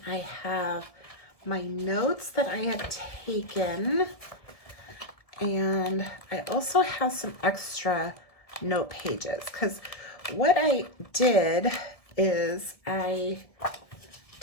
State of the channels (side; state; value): right; late; 1.7 ms